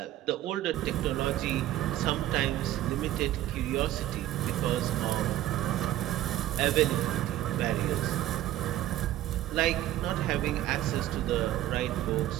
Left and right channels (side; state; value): left; quieter; 13.9 dB